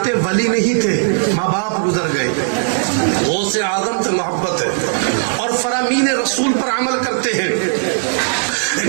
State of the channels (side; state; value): left; silent; digital silence